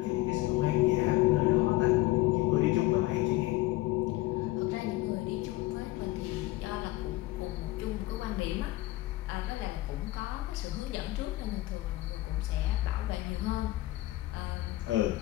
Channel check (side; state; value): right; quieter; 18.1 dB